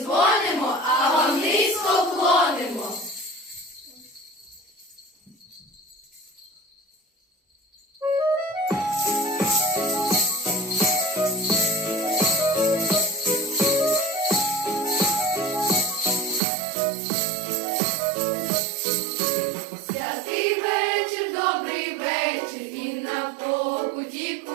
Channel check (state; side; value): drops out; left; at 16.4 s